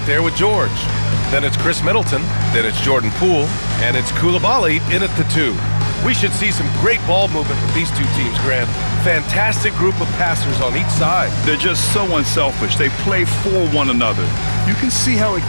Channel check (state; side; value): inverted; both; correlation -1.00